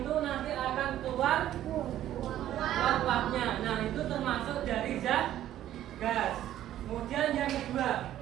nanti akan keluar uap-uapnya. Nah, itu termasuk dari zat gas. Kemudian yang kedua,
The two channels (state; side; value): quieter; left; 12.5 dB